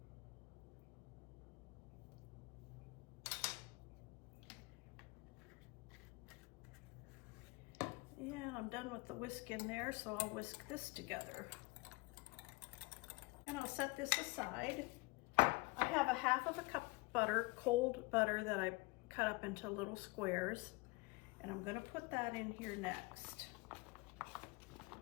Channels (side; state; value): right; quieter; 25.1 dB